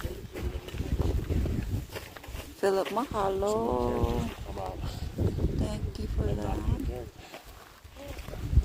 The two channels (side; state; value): both; identical; correlation 1.00